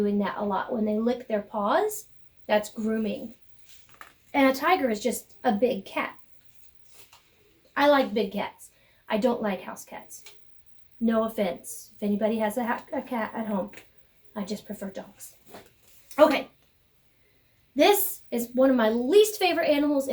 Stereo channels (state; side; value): identical; both; correlation 1.00